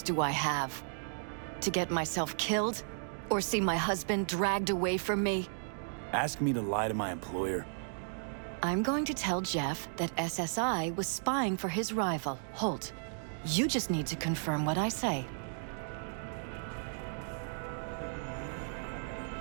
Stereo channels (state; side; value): silent; left; digital silence